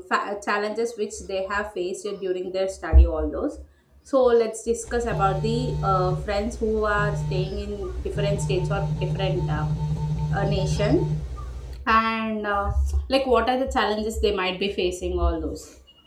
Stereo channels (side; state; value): both; identical; correlation 1.00